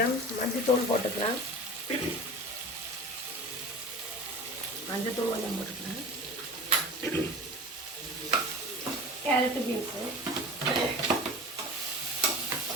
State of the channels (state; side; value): normal; both; correlation 0.35